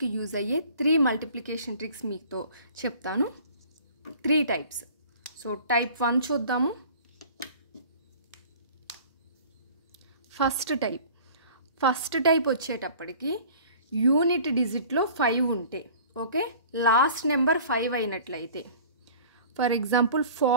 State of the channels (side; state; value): both; inverted; correlation -0.46